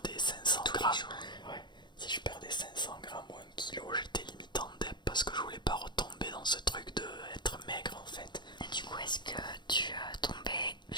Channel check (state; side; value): late; right; 0.22 ms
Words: dans ce truc de être maigre en fait. Et du coup, est-ce que tu tombais,